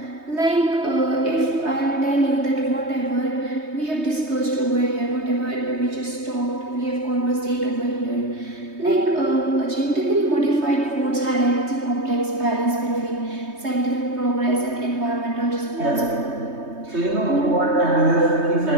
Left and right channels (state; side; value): late; left; 3.2 ms